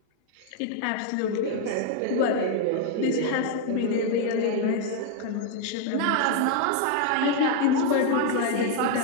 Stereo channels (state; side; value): different; both; correlation 0.01